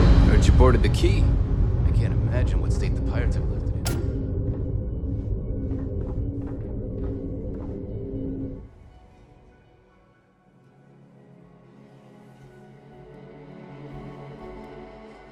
Heard you boarded the key. I can't imagine what state the pirates have left.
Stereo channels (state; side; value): identical; both; correlation 1.00